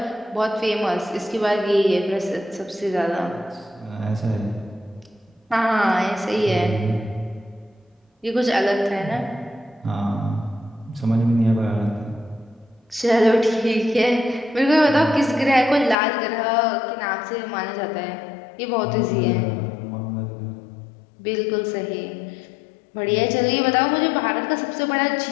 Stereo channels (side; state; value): right; drops out; at 16.0 s